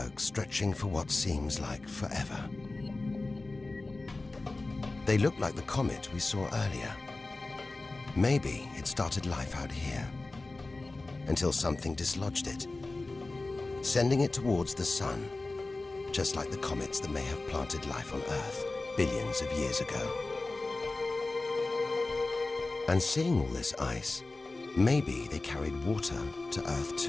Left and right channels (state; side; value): quieter; right; 3.2 dB